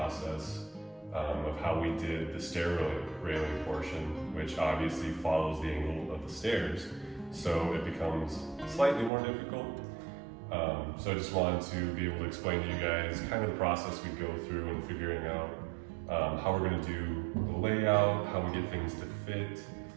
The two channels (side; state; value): left; drops out; at 9.1 s